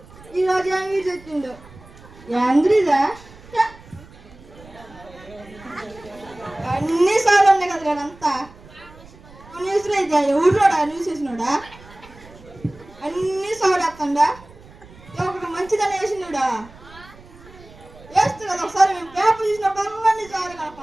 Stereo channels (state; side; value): noise; right; rumble, 22 dB below the sound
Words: ఈరోజు ఏమి తెచ్చిండు. ఏంద్రిదా అన్ని సార్లు ఉన్నాయి కదా అంతా న్యూస్లో అయితే ఊళ్ళోడా న్యూస్ వేసినాడా అన్ని సార్లు వేస్తాడా. ఒకటి మంచిదని వేసినాడా వేస్తుంది కదా. ఒకసారి మేము పేపర్ చూసినప్పుడు అన్ని సార్లు